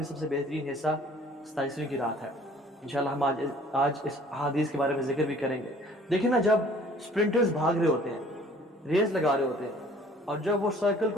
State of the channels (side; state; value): both; normal; correlation 0.54